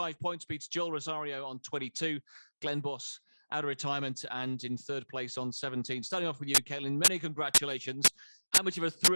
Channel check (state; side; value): inverted; both; correlation -1.00